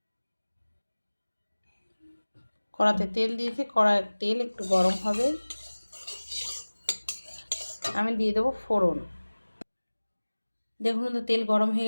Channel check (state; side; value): inverted; both; correlation -1.00